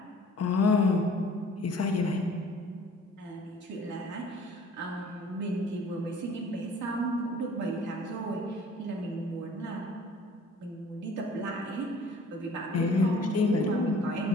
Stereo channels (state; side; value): normal; both; correlation 0.51